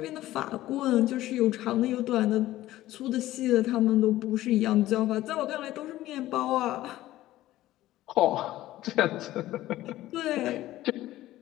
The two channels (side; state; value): right; quieter; 15.3 dB